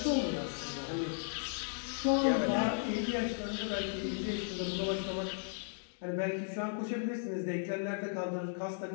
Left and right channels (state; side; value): silent; right; digital silence